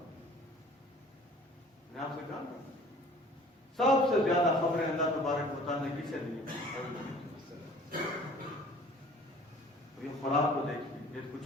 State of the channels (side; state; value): both; normal; correlation 0.50